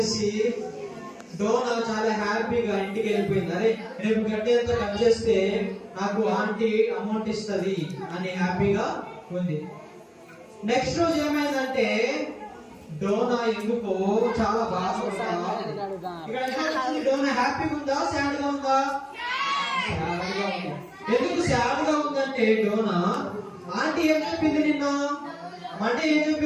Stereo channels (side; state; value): both; identical; correlation 1.00